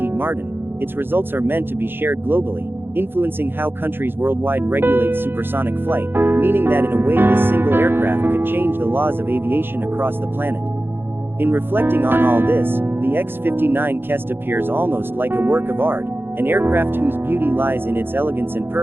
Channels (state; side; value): late; left; 0.10 ms